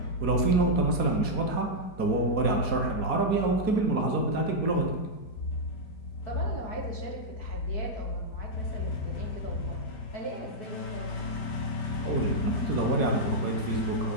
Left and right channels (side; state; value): right; late; 4.2 ms